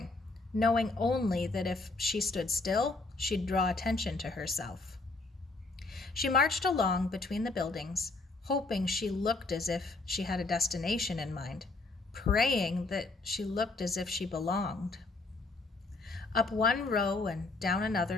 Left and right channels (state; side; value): quieter; right; 3.4 dB